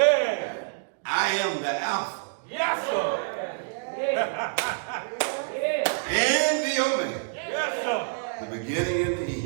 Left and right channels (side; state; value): left; silent; digital silence